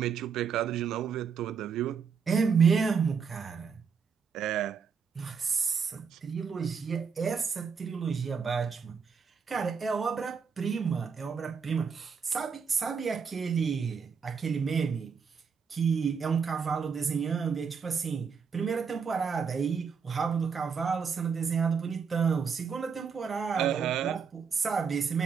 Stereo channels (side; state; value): left; quieter; 6.1 dB